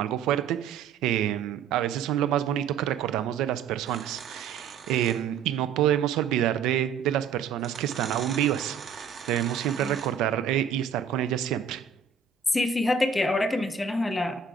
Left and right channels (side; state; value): left; quieter; 6.4 dB